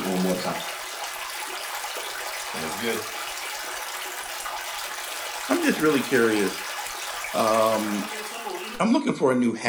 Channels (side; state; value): both; identical; correlation 1.00